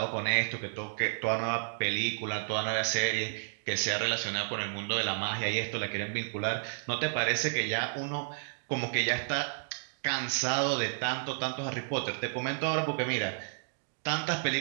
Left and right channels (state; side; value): silent; left; digital silence